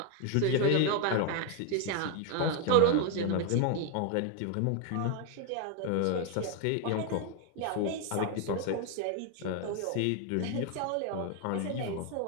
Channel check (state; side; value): different; both; correlation 0.01